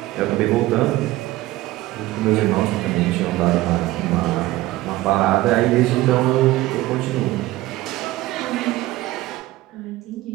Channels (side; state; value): left; quieter; 17.4 dB